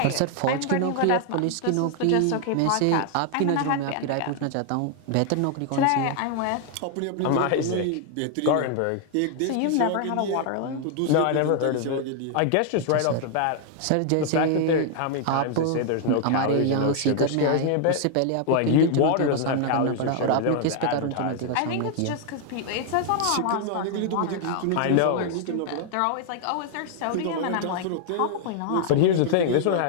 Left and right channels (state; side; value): different; both; correlation 0.00